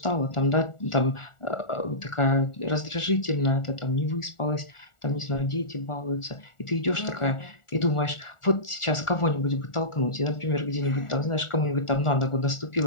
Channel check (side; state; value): right; late; 1.4 ms